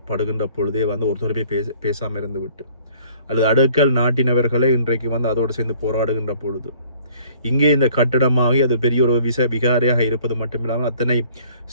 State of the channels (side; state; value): both; inverted; correlation -0.56